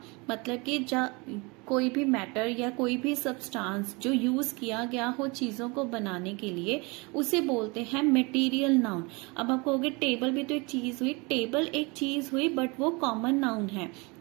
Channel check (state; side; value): quieter; left; 27.7 dB